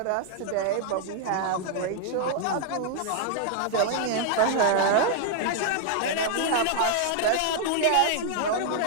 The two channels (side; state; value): both; different; correlation 0.00